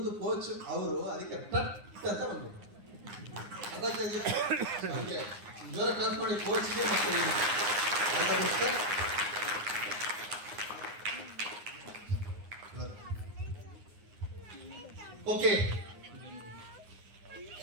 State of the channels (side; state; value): left; late; 9.7 ms